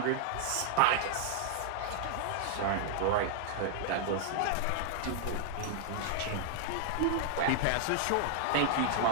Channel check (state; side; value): different; both; correlation -0.01